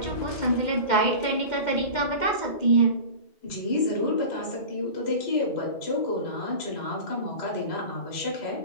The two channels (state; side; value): late; right; 2.1 ms